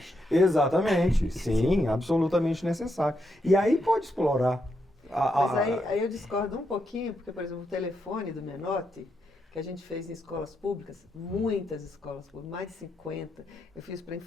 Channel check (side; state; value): both; normal; correlation 0.82